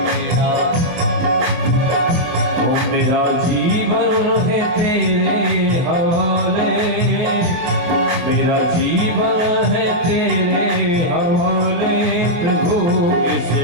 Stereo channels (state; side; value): late; left; 24 ms